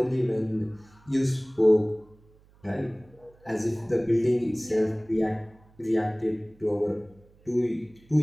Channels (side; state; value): right; noise; hum, 29 dB below the sound